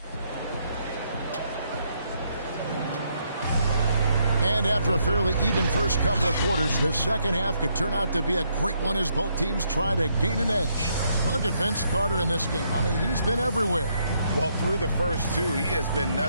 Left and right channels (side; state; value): both; inverted; correlation -0.74